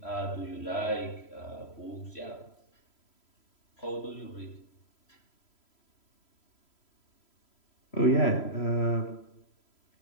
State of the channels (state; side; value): late; right; 3.0 ms